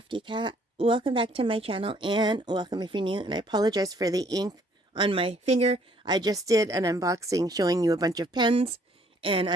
Cat. Welcome back to my channel and welcome if you're new, and I apologize for the ink on my finger. I just did an unboxing showing you a bunch of pens and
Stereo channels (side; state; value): both; normal; correlation 0.63